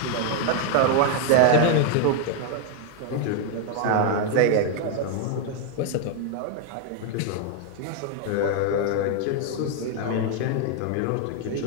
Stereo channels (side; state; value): both; different; correlation 0.00